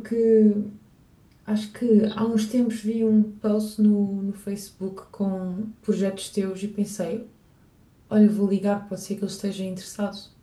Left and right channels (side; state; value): both; identical; correlation 1.00